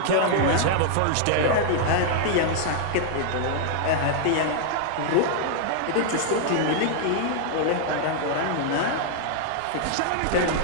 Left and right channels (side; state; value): both; different; correlation -0.01